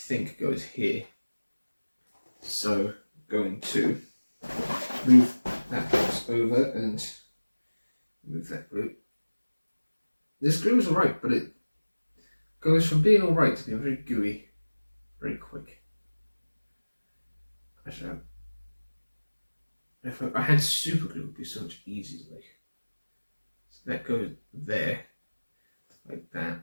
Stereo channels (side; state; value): both; inverted; correlation -1.00